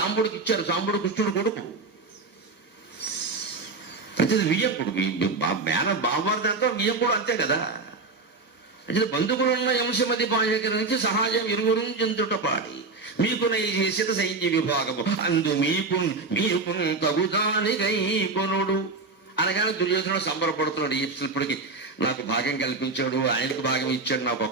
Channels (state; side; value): quieter; left; 3.8 dB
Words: ఇచ్చారు. సాంబుడు కృష్ణుడు కొడుకు. అయితే వియ్యకుడు, బావమరిదంతా వియ్యకుడు, అంతే కదా. అంటే బంధువులున్న అంశమది బాయకరించి సహాయం ఇరువురు చెందుట పాడి మీకు చేసిన సైన్య విభాగము అందు మీకు తగుదానిగై కొనుడు అనగానే దుర్యోధనుడు సంబరపడుతున్నాడు. ఇప్పటికి నాకు భాగం కల్పించాడు, ఆయనకు భాగం ఇచ్చాడు, నాకు